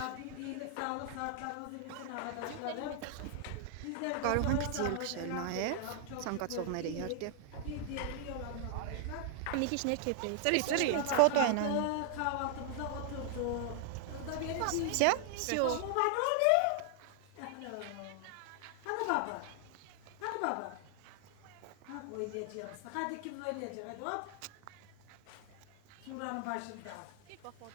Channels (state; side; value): different; both; correlation 0.00